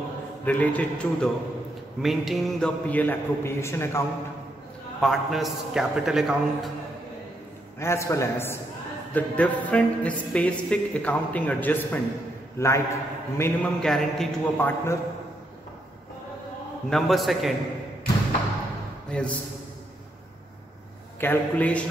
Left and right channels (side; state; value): both; normal; correlation 0.78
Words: related to the maintaining the PL appropriation account, partners capital account, as well as the different specific accounting adjustment like minimum guarantee to a partner. Number second is calculation